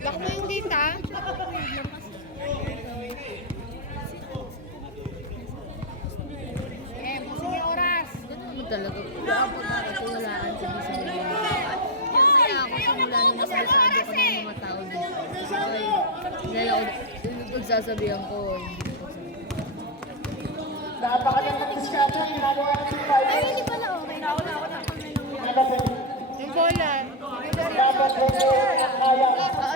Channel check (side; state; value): both; normal; correlation 0.05